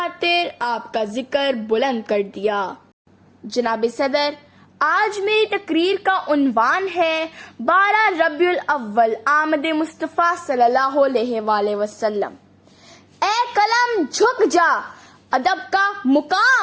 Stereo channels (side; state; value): both; identical; correlation 1.00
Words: آپ کا ذکر بلند کر دیا۔ جناب صدر، آج میری تقریر کا عنوان ہے 12 ربیع الاول آمد مصطفیٰ صلی اللہ علیہ وآلہ وسلم۔ اے قلم جھک جا، ادب کا